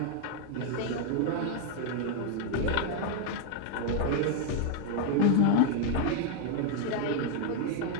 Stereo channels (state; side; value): different; both; correlation 0.00